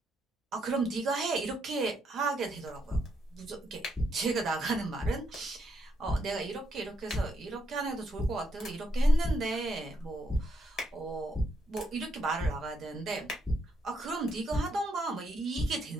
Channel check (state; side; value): normal; both; correlation 0.77